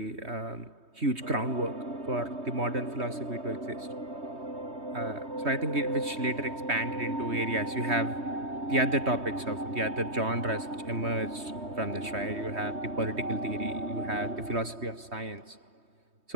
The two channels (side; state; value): left; late; 3.2 ms